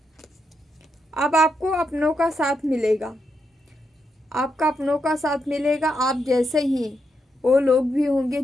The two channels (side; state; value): both; normal; correlation 0.82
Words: अब आपको अपनों का साथ मिलेगा, आपका अपनों का साथ मिलेगा। आप जैसे ही वो लोग भी होंगे